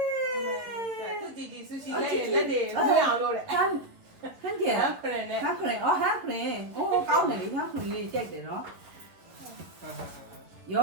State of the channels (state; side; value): late; left; 11 ms